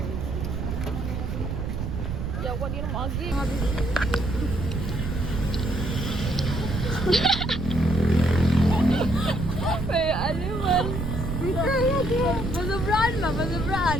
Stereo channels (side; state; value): right; noise; rumble, 3 dB below the sound